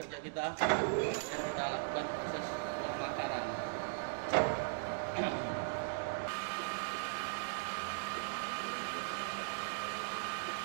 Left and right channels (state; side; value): silent; left; digital silence